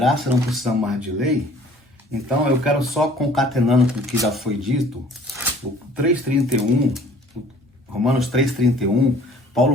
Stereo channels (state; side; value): normal; both; correlation 0.52